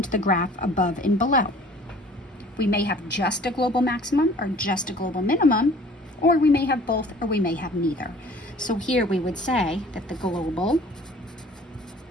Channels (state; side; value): normal; both; correlation 0.50